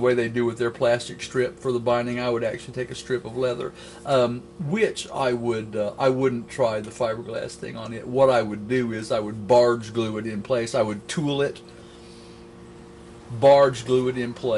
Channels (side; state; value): both; identical; correlation 1.00